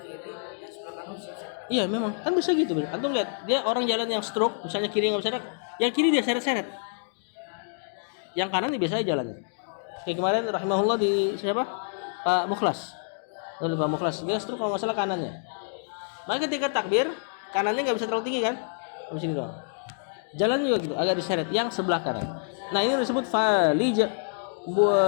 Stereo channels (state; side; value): silent; right; digital silence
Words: Iya memang, kan bisa gitu. Antum lihat, dia orang jalan yang stroke, misalnya kiri nggak bisa gerak, yang kiri dia seret-seret, yang kanan dia biasa jalannya. Kayak kemarin rahimahullah di siapa? Pak Mukhlas. Lalu Pak Mukhlas dia stroke kalau nggak salah kanannya. Maka ketika takbir, kanannya nggak bisa terlalu tinggi kan? Di sini doang. Jalan juga gitu, agak diseret yang sebelah kanan. Nah ini disebut falij,